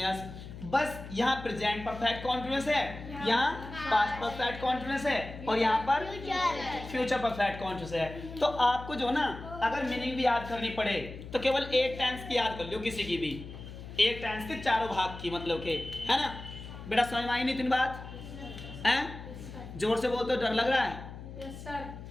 बस यहाँ प्रेजेंट परफेक्ट कॉन्टिन्यूअस है, यहाँ पास्ट परफेक्ट कॉन्टिन्यूअस है और यहाँ पर फ्यूचर परफेक्ट कॉन्टिन्यूअस है। तो आपको जो ना अगर मीनिंग भी याद करनी पड़े तो केवल एक टेंस की याद कर लो, किसी की भी एक टेंस के चारों भाग की, मतलब के, है ना। बेटा समझ में आई नहीं तीन बात? हैं? जोर से बोल तो डर लग रहा है? यस सर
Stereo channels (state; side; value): noise; left; hum, 12 dB below the sound